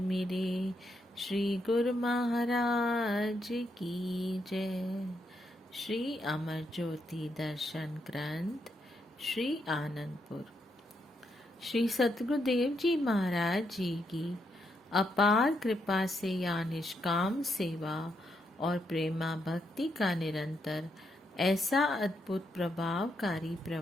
मेरे श्री गुरु महाराज की जय। श्री अमर ज्योति दर्शन ग्रंथ श्री आनंदपुर। श्री सतगुरुदेव जी महाराज जी की अपार कृपा से या निष्काम सेवा और प्रेमा भक्ति का निरंतर ऐसा अद्भुत प्रभावकारी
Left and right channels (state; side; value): normal; both; correlation 0.79